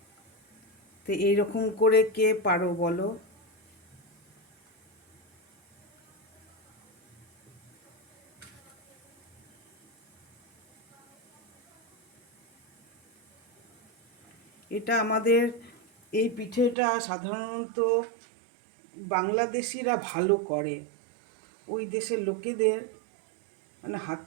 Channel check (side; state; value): left; drops out; at 16.8 s